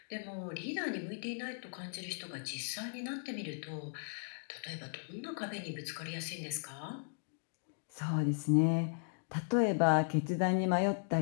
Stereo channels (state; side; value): silent; right; digital silence